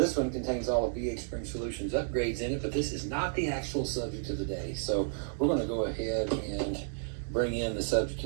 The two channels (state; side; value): silent; left; digital silence